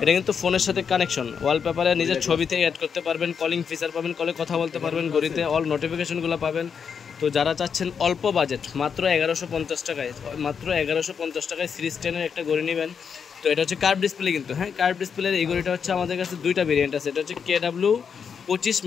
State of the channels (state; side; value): quieter; right; 6.7 dB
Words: কিন্তু ফোনের সাথে কানেকশন, ওয়ালপেপারে নিজের ছবি থেকে অ্যাড করতে পারবেন, কলিং ফিচার পাবেন, কলে কথা বলতে পারবেন, ঘড়িতে অল নোটিফিকেশনগুলো পাবেন। তো যারা চাচ্ছেন অল্প বাজেট, মাত্র 1150 টাকায়, মাত্র 1150 টাকায় সিরিজ 10-এর একটা ঘড়ি নেবেন। তো এটা হচ্ছে কার্ভ ডিসপ্লে কিন্তু। হ্যাঁ, কার্ভ ডিসপ্লের এই ঘড়িটা হচ্ছে আমাদের কাছে দুইটা ভেরিয়েন্ট আছে। এটা হচ্ছে KW25